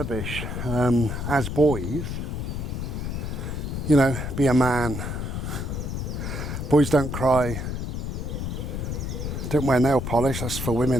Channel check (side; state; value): left; noise; rumble, 4 dB below the sound